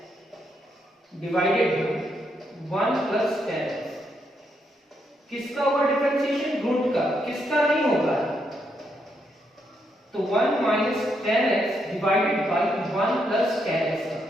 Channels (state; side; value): normal; both; correlation 0.78